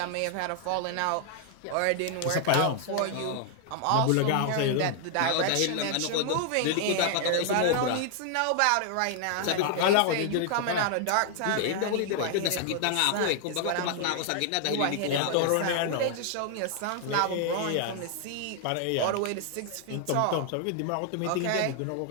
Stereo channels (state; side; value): different; both; correlation 0.00